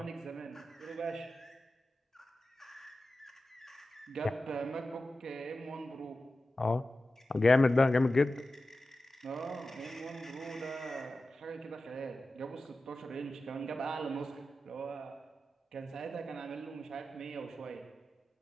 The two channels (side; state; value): both; normal; correlation 0.93